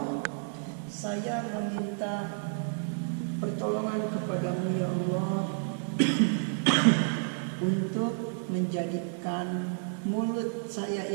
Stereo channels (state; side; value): silent; left; digital silence